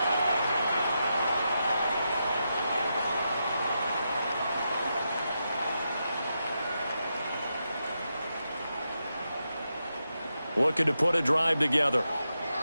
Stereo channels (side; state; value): both; inverted; correlation -0.86